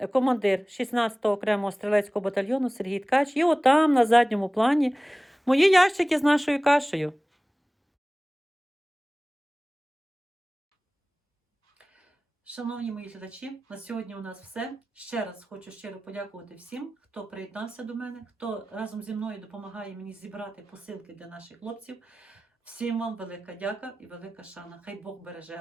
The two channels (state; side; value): normal; both; correlation 0.98